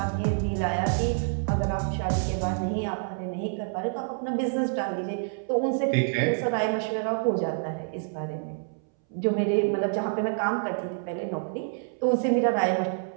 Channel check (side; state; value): left; silent; 60 dB below the other